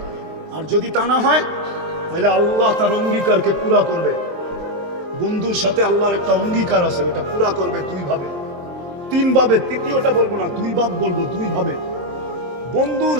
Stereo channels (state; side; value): late; left; 23 ms